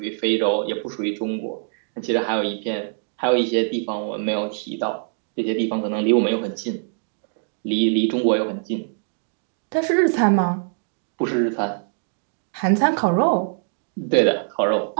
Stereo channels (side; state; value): left; silent; digital silence